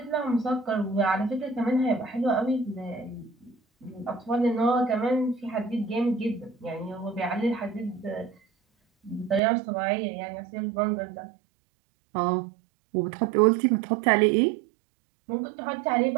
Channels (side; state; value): left; drops out; at 9.4 s